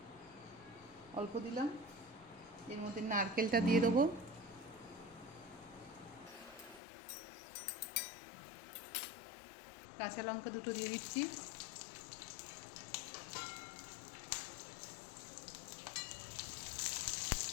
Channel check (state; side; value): drops out; right; at 6.8 s